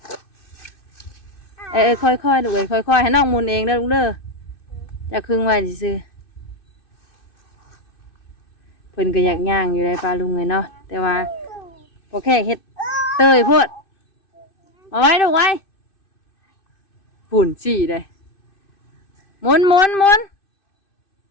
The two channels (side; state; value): right; late; 2.6 ms